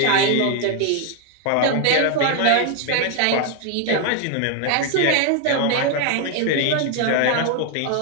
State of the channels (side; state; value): both; different; correlation 0.01